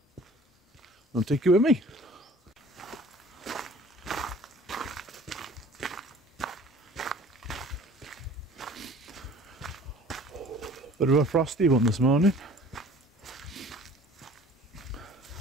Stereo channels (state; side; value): normal; both; correlation 0.49